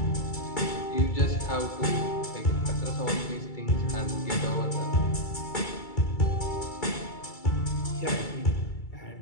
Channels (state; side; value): late; right; 2.3 ms